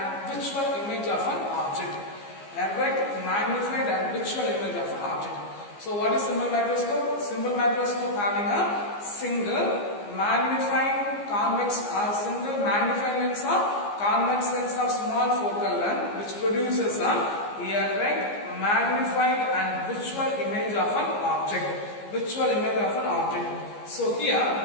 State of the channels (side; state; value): right; late; 15 ms